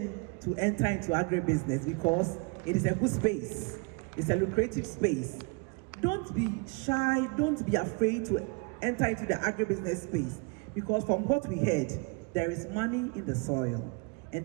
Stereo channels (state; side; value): quieter; left; 31.6 dB